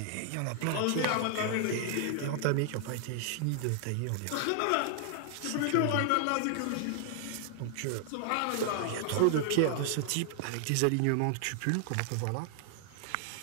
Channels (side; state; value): both; different; correlation 0.00